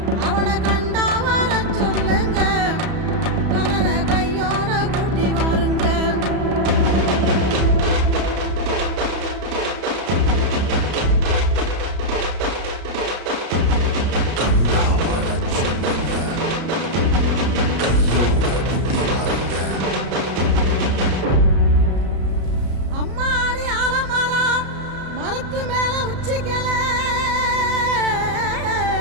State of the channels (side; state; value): left; late; 34 ms